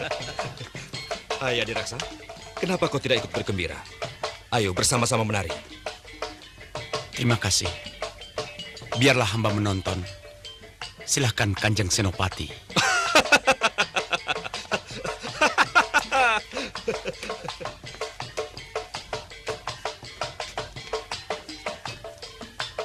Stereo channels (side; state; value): both; identical; correlation 1.00